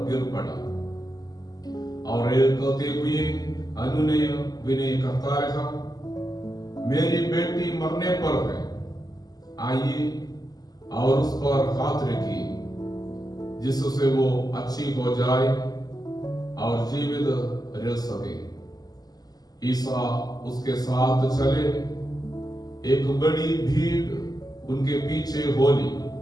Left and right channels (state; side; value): late; right; 0.19 ms